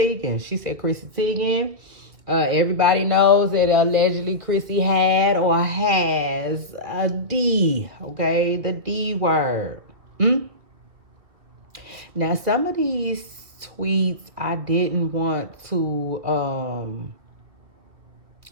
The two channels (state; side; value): late; left; 1.9 ms